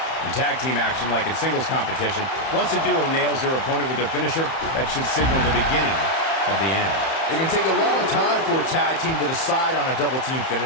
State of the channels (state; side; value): late; right; 31 ms